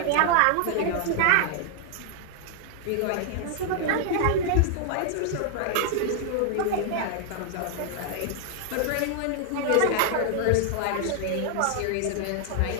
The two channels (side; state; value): both; different; correlation 0.00